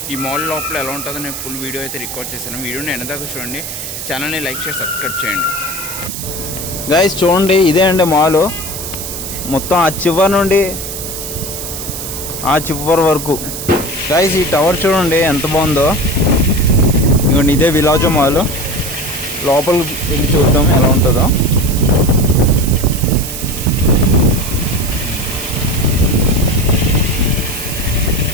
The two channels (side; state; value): right; noise; hiss, 7 dB below the sound